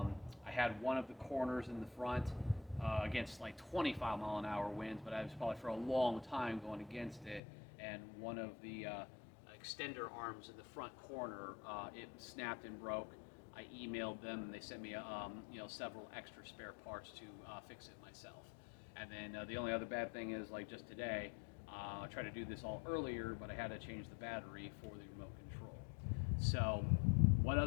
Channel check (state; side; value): drops out; right; at 7.4 s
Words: I had one of the corners in the front against like 25 mile an hour winds, but I was probably for a long time going against it. And one of the extender arms in the front corner, it snapped and broke. I emailed them, and they sent me several extra spare parts to fix it myself. And then the only other bad thing is, like just today, I tried to do this all earlier, but I had to change the battery for the remote control. So what